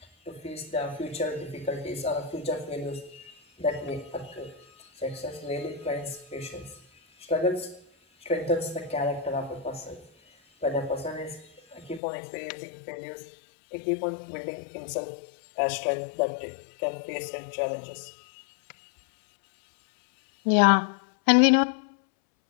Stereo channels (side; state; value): right; drops out; at 12.0 s